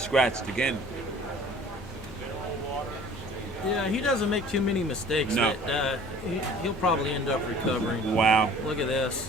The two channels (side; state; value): both; normal; correlation 0.49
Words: again. Yeah, he doesn't make too many mistakes. No. But, he'll probably end up recovering. Wow. Look at this.